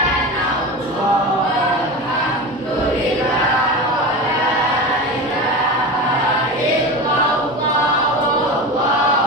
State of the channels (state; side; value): normal; both; correlation 0.26